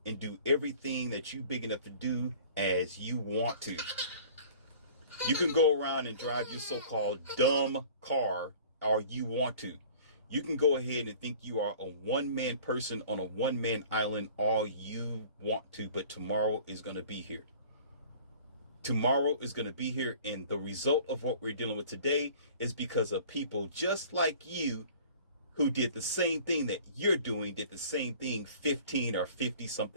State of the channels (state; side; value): inverted; both; correlation -0.46